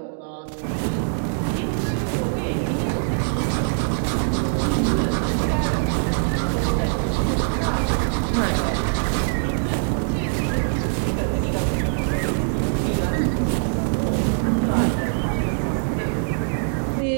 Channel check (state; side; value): silent; left; digital silence